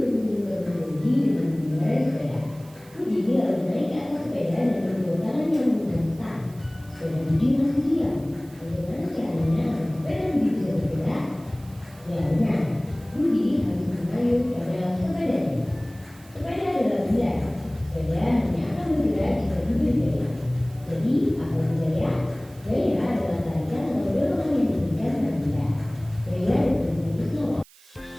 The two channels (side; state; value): right; noise; hiss, 25 dB below the sound